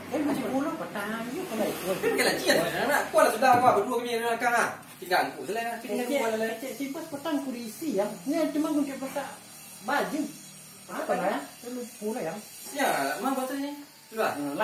Macam pulau petang you kalau ikut. Pakai laci dah nak. Kau lah sudah kau berdua kami dalam kang ah. Tinggal aku selai. Tinggal aku lah. Simpas petang kursi yang. Ni cuma kunci petak baju. Apa lah ya? Lu pula yang. Ya, mang betul ni. Sudah.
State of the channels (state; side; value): identical; both; correlation 1.00